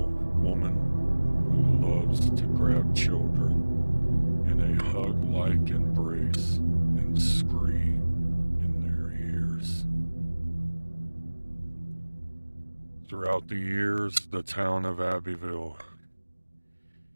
woman who loves to grab children in a hug-like embrace and scream in their ears. Throughout the years, the town of Abbyville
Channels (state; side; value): inverted; both; correlation -1.00